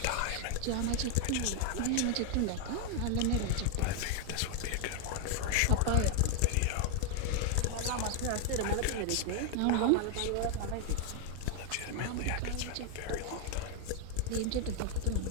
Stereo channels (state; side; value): different; both; correlation 0.00